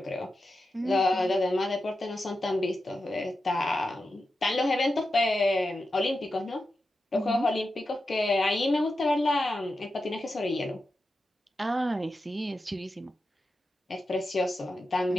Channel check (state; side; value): normal; both; correlation 0.90